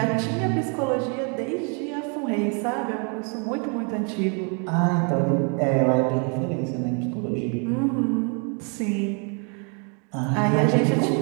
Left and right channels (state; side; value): quieter; left; 37.0 dB